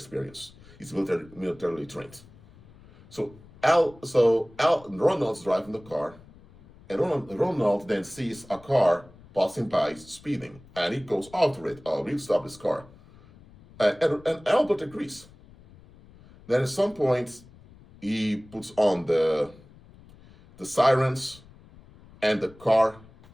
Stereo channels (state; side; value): noise; left; rumble, 23 dB below the sound